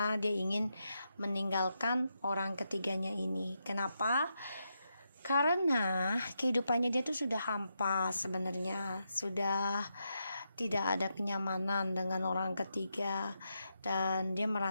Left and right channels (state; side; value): inverted; both; correlation -0.84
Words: dia ingin meninggalkan orang ketiganya ini. Kenapa? Karena kehidupannya dia tuh sudah hampa sebenarnya, sudah tidak ada kenyamanan dengan orang ketiga, dan dia